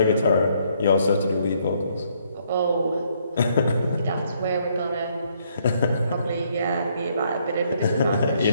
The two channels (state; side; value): inverted; both; correlation -0.70